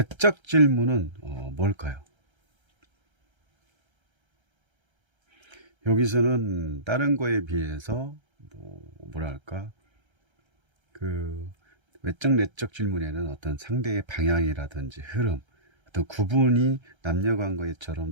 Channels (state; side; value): late; left; 1.3 ms